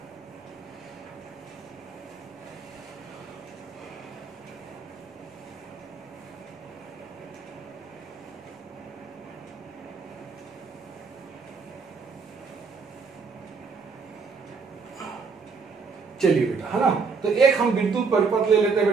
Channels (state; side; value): quieter; left; 5.1 dB